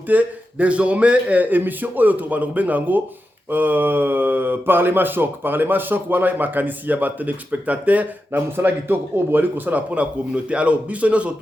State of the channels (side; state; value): both; normal; correlation 0.90